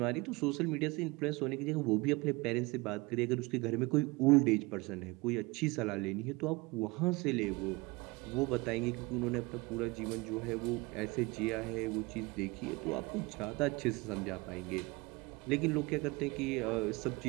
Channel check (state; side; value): quieter; left; 24.4 dB